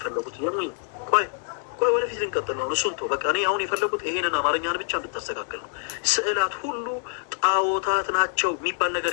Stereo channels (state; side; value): silent; right; 56 dB below the other